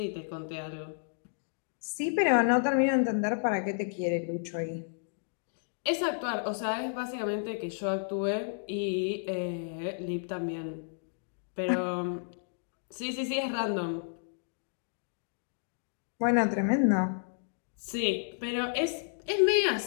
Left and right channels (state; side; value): silent; right; digital silence